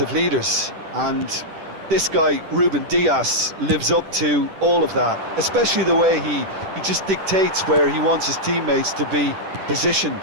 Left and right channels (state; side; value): late; left; 10 ms